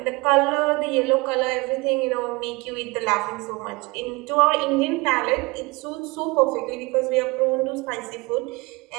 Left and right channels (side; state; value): left; quieter; 24.8 dB